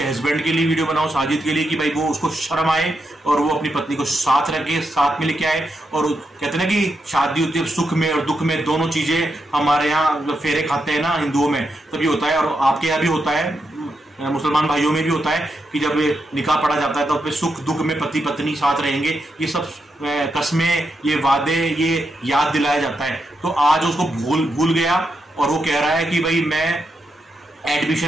हस्बैंड के लिए वीडियो बनाओ, साजिद के लिए, कि भाई वो उसको शर्म आए और वो अपनी पत्नी को साथ रखे, साथ में लेके आए। और कहते हैं ना कि शादी होती है सुख में और दुख में, दोनों चीजें हमारे यहाँ फेरे खाते हैं ना हिंदुओं में, तभी होता है। और आपके यहाँ भी होता है, मुसलमान भाइयों में भी होता है कि जब निकाह पढ़ा जाता है तो फिर सुख दुख में पति पत्नी साथ रहेंगे, ये सब कस्में, ये वादे, ये याद दिलाया जाता है। तो आज उसको भूल गया और वो कह रहा है कि भाई मैं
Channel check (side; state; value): both; normal; correlation 0.84